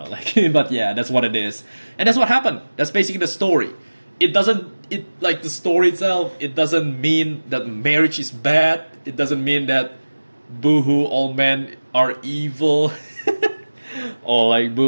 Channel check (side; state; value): both; inverted; correlation -1.00